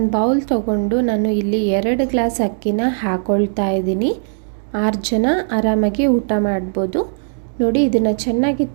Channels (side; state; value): left; silent; digital silence